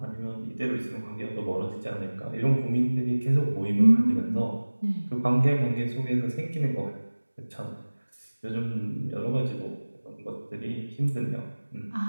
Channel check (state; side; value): inverted; both; correlation -1.00